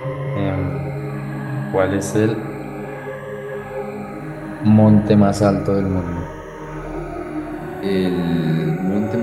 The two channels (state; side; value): identical; both; correlation 1.00